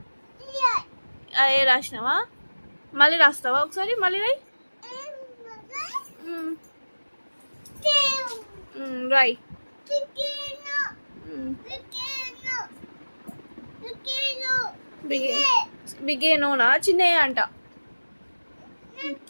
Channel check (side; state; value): both; inverted; correlation -1.00